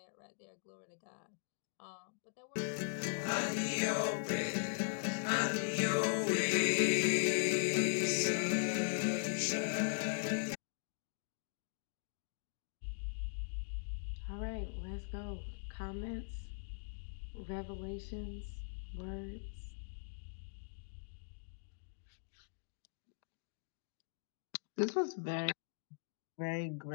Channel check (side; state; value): right; silent; digital silence